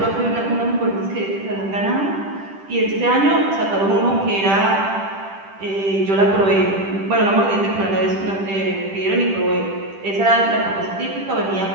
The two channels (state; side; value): late; left; 10 ms